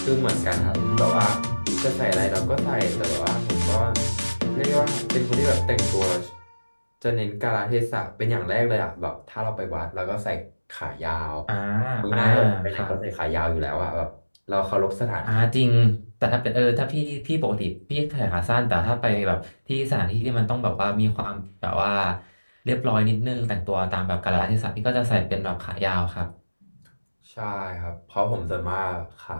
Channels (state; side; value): inverted; both; correlation -1.00